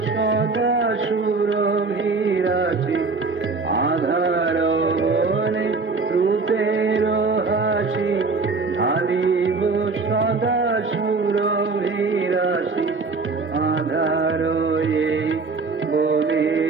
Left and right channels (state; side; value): quieter; left; 4.1 dB